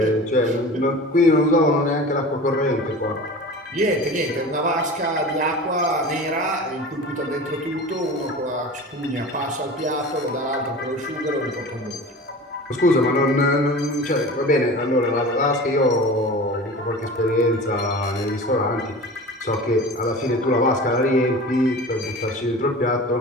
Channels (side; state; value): both; normal; correlation 0.36